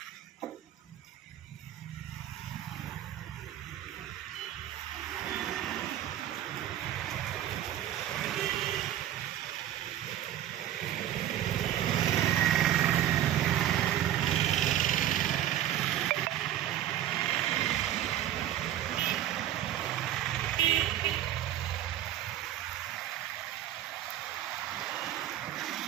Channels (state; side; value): quieter; left; 12.3 dB